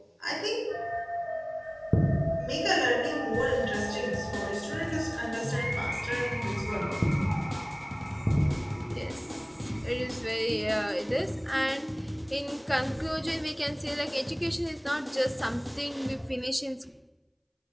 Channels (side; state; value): both; identical; correlation 1.00